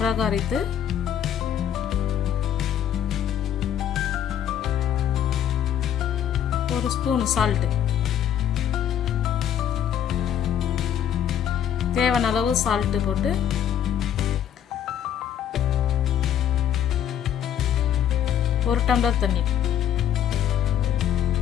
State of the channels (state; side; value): quieter; right; 9.9 dB